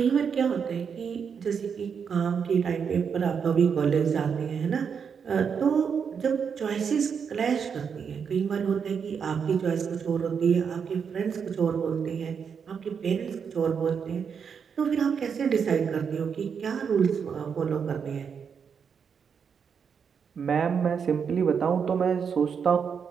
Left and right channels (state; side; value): quieter; left; 6.7 dB